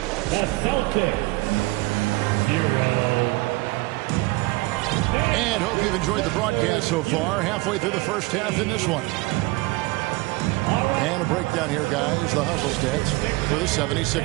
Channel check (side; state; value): left; quieter; 22.2 dB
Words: Celtics, 0. And hope you've enjoyed the broadcast so far. Halfway through the first half in this one. And a breakdown here, guys. The hustle stats for the